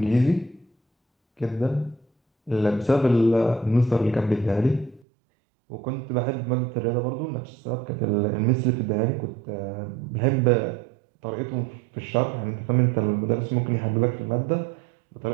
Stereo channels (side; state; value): left; drops out; at 5.0 s